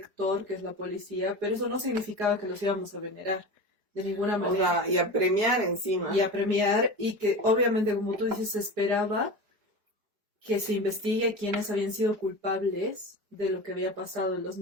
que es la policía, pero eso no significaba que los íbamos a venerar de ninguna manera. Y a premiar encima. Y a premiar, y que obviamente, como tú dices, se esperaba que se investigue quiénes habían sido culpables de lo que había pasado en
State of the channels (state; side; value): late; left; 4.8 ms